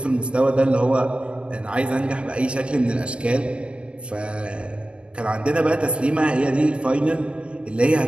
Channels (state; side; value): late; left; 0.058 ms